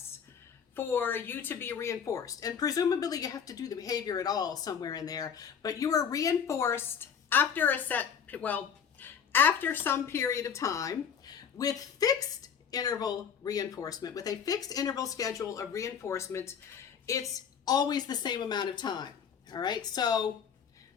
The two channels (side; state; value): right; quieter; 7.4 dB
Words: for you to be reinforced. And presumably you have to do the behavior at all somewhere in there, but you are reinforced after after some period of time with fixed interval reinforcement. With a fixed interval schedule of reinforcement, it's always the same amount of time. All right, so